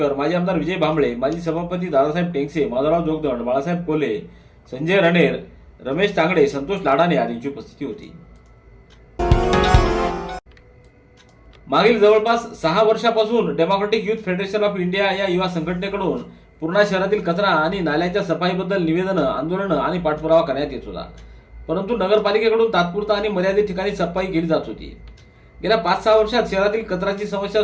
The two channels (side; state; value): both; identical; correlation 1.00